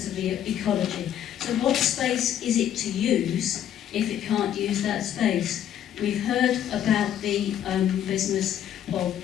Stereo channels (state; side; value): quieter; right; 10.4 dB